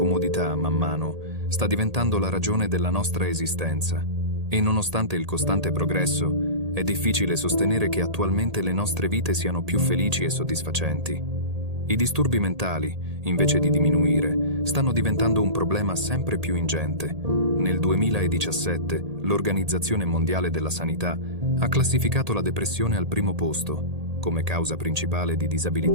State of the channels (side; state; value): left; late; 1.8 ms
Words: man mano, sta diventando la ragione della nostra esistenza. E nonostante il costante progresso, è difficile sostenere che attualmente le nostre vite siano più felici e soddisfacenti. I disturbi mentali, invece di diminuire, stanno diventando un problema sempre più ingente. Nel 2017, l'Organizzazione Mondiale della Sanità ha classificato la depressione al primo posto, come causa principale di